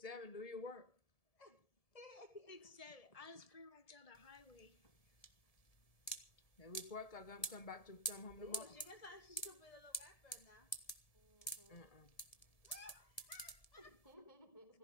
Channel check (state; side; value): late; right; 1.7 ms